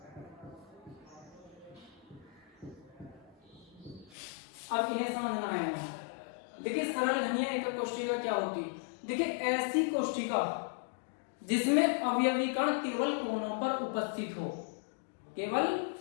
अब इन्हें समझना है। देखिए सरल घनीय एकक कोशिका क्या होती है, देखिए ऐसी कोशिका जिसमें अवयवी कण केवल कोनों पर उपस्थित हो, केवल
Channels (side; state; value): right; drops out; at 4.2 s